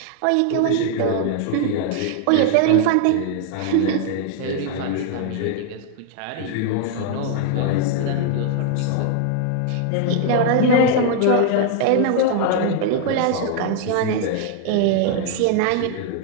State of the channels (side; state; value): both; different; correlation 0.00